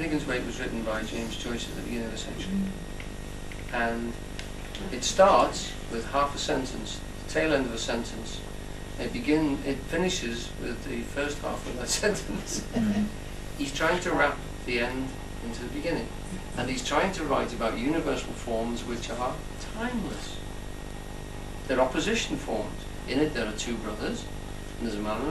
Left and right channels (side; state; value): both; identical; correlation 1.00